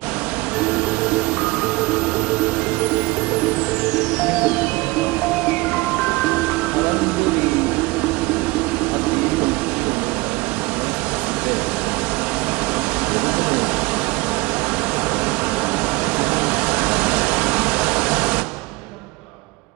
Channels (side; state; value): left; quieter; 22.6 dB